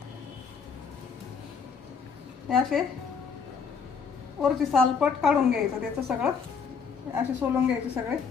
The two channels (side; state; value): right; quieter; 5.9 dB